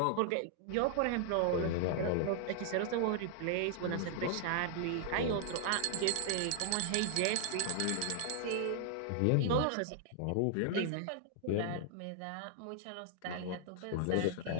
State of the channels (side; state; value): both; different; correlation -0.01